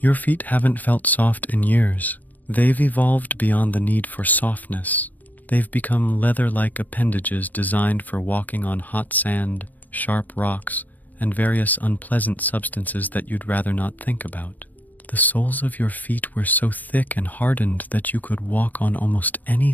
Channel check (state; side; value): late; right; 0.082 ms